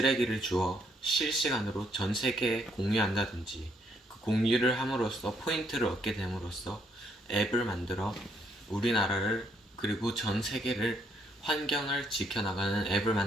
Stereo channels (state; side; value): normal; both; correlation 0.71